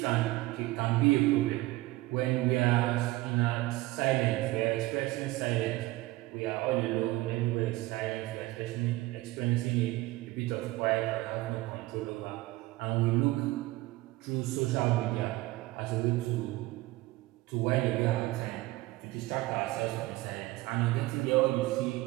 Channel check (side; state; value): left; quieter; 19.2 dB